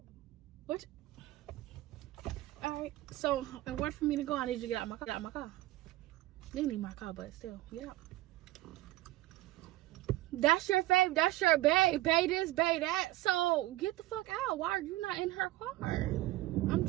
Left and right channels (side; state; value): left; quieter; 17.4 dB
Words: What? Alright. So in order for me to go, I need you to get out of my car. You need my car, but still, get out. That's your fave. That's your bae. Bae this, bae that. So get the fuck out. Why are you not in her car? I'm